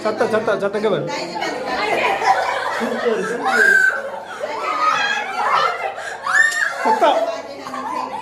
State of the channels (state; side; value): identical; both; correlation 1.00